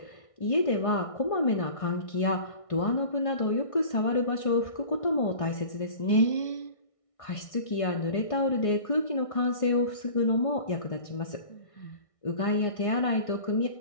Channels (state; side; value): late; right; 1.6 ms